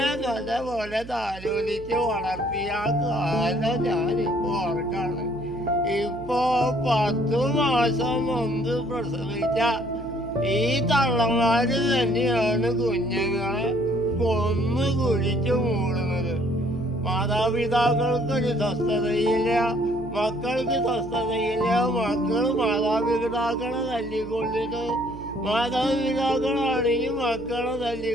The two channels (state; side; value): noise; right; hum, 15 dB below the sound